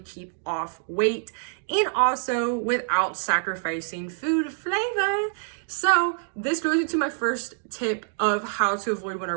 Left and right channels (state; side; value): silent; left; 61 dB below the other